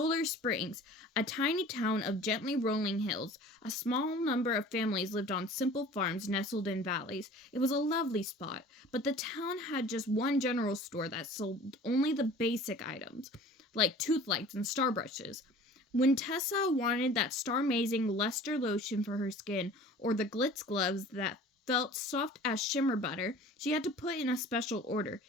Springs, a tiny town of gently rolling hills. A small number of families lived on simple farms nestled in valleys. It was a lovely spot, but the town had just one general store that sold only the basic items, like tooth lights and star brushes. When Tessa wanted that star-amazing luster lotion for her skin, or the glitz gloves that felt soft as shimmer butter, she had to put in a special order.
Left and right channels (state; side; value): normal; both; correlation 0.44